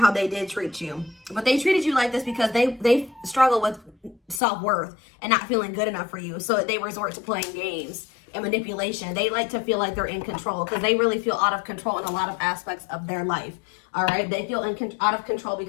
they did treat you. But they treated you like this because they struggle with self-worth and not feeling good enough for you. So they resort to playing games and manipulation. They like to feel like they're in control because they really feel out of control in a lot of aspects of their life. All right. They feel out of control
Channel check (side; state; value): right; drops out; at 4.4 s